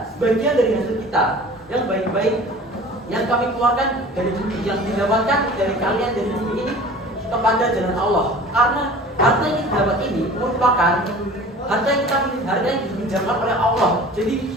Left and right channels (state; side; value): normal; both; correlation 0.43